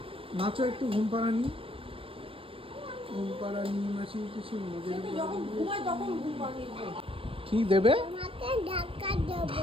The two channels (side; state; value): left; late; 0.26 ms